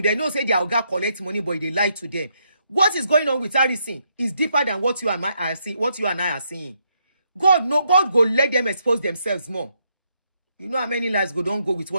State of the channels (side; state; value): both; inverted; correlation -0.76